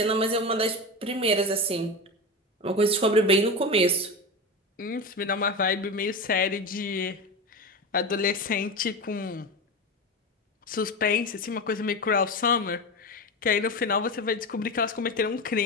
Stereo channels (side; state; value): both; normal; correlation 0.22